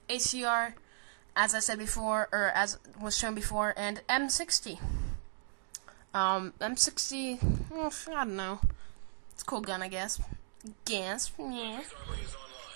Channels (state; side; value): silent; left; digital silence